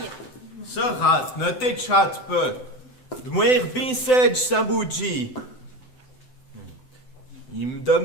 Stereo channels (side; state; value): right; late; 7.9 ms